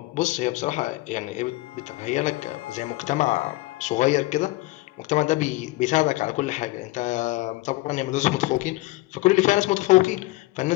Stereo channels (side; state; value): right; quieter; 20.1 dB